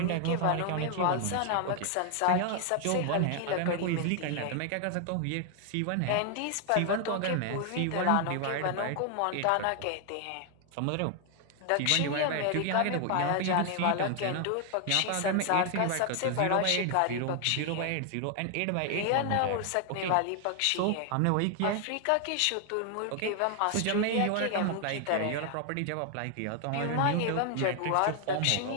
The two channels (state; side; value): different; both; correlation 0.00